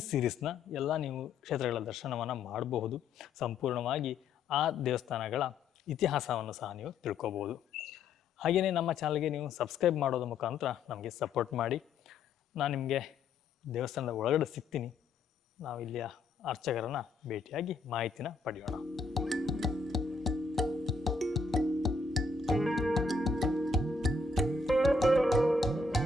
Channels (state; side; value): quieter; right; 4.0 dB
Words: ಸೀರೀಸ್ನ ಎಲ್ಲ ನೀವು ಕ್ಷೇತ್ರಗಳ ದರ್ಶನವನ್ನು ಮಾಡಬಹುದು. ಸಂಪೂರ್ಣವಾಗಿ ಆ ದೇವಸ್ಥಾನಗಳ ಇತಿಹಾಸವನ್ನು ಸಹ ನೀವು ತಿಳ್ಕೊಬೋದು. ಹಾಗೆಯೇ ನಮ್ಮ ಚಾನಲ್ಗೆ ನೀವು ಸಬ್ಸ್ಕ್ರೈಬ್ ಮಾಡೋದ್ರ ಮುಖಾಂತರ ನಮಗೆ ಸಪೋರ್ಟ್ ಮಾಡಿ. ನಾನು ನಿಮಗೆ ದೇವಸ್ಥಾನದ ಒಳಗಡೆ ಸಿಗ್ತೀನಿ. ನಾವು ಇಲ್ಲಿಯ ಅರ್ಚಕರನ್ನು ಭೇಟಿಯಾಗಿ ಮಾಹಿತಿನ ಪಡೆಯೋಣ.